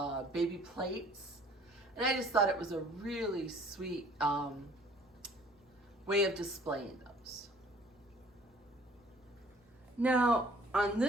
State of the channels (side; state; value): both; normal; correlation 0.55